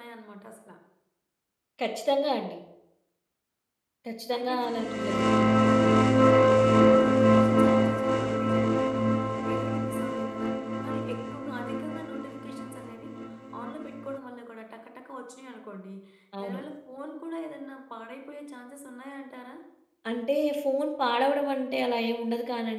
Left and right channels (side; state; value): both; identical; correlation 1.00